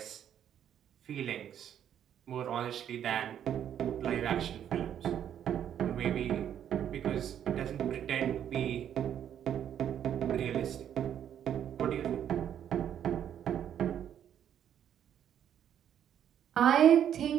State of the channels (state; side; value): quieter; left; 9.7 dB